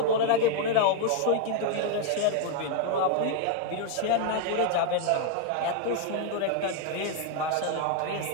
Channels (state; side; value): different; both; correlation 0.00